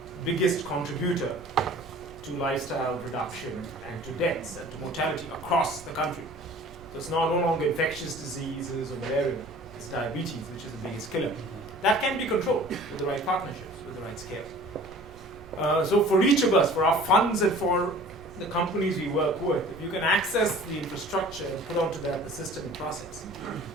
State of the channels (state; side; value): noise; right; rumble, 21 dB below the sound